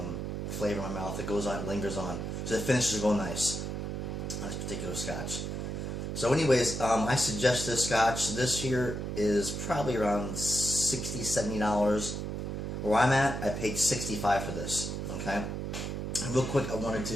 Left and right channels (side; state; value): right; noise; hum, 4 dB below the sound